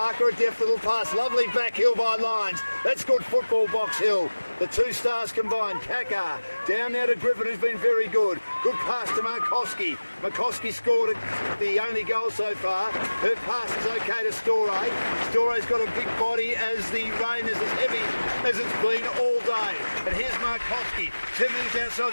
a deft little pass. Lovely back heel by Lyons. That's good football, Box Hill. The two stars combined. Kaka down now to Griffin, who's been very good. Good pass to Markowski. Markowski scored the only goal so far. Her pass is okay to Storey. Storey's got a big body as the rain is as heavy as it's been all day. And here's Markowski. 10 minutes outside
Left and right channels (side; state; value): both; inverted; correlation -1.00